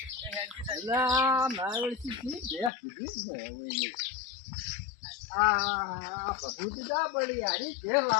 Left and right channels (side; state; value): right; drops out; at 2.7 s